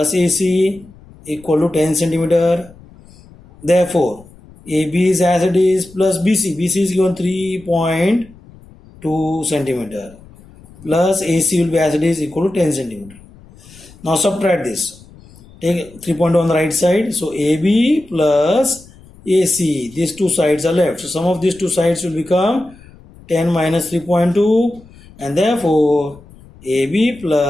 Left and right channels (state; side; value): noise; left; rumble, 23 dB below the sound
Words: AC equal to 10 centimeter. Therefore, AB is as it is plus BC. BC is given 3.2 centimeter plus AC will be as it is equal to 10 centimeter. Now subtract this. Take 3.2 on the right side. So AB plus AC, these two sides are left. So sum of these two sides will become 10 minus 3.2, and therefore AB